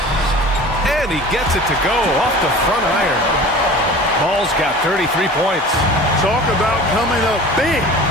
And he gets it to go off the front iron. Ball's got 33 points. Talk about coming up big.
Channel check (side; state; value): both; normal; correlation 0.40